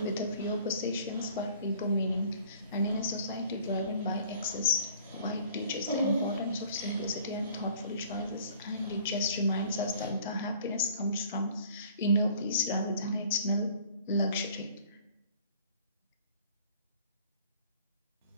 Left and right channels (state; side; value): inverted; both; correlation -0.52